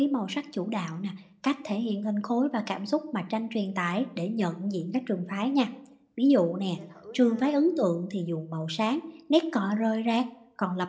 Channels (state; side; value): identical; both; correlation 1.00